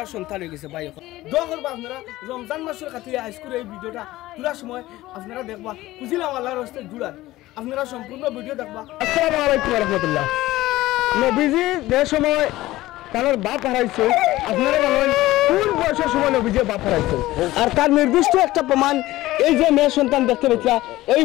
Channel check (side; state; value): right; quieter; 17.0 dB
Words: সন্তান হয়ে গেছে ভাই এখন দোয়া করবো আপনারা রমজান মাসের খাতিরে হাইস্কুল এই ভিডিওটা তোলার সময় আপনারা দেখবা খুঁজিলাম আল্লাহর হস্তে জুড়ার আপনারা সম্পূর্ণ ভিডিও দেখবা। আসসালামু আলাইকুম রহমতুল্লাহ। নবীজি যে সময় তার বাপ হারাইছে আপনারা জানেন কোন বয়সের সময় নবীজি বাপ হারাইছে আর তার নির্দিষ্ট একটা প্রমাণ এই যে মেয়ে সন্তান দেখতে পেয়েছিলা এই